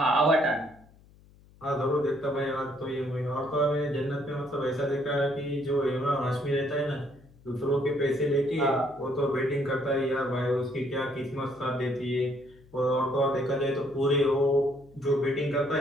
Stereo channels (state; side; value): noise; left; hum, 26 dB below the sound